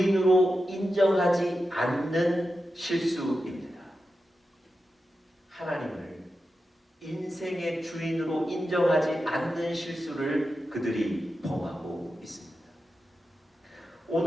인정하지 않는 실수입니다. 하나님을 인생의 주인으로 인정하지 않는 실수를 그들이 범하고 있습니다.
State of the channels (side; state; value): both; normal; correlation 0.90